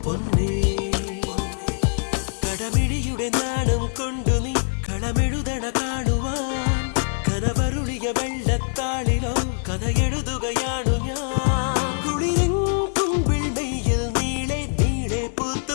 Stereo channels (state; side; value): silent; right; 56 dB below the other